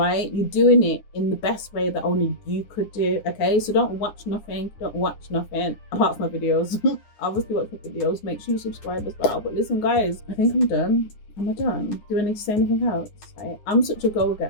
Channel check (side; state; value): right; late; 9.7 ms